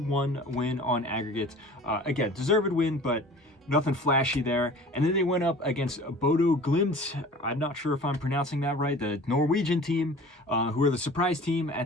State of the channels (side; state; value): both; normal; correlation 0.43